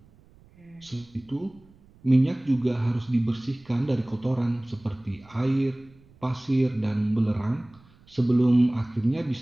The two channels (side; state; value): right; noise; rumble, 28 dB below the sound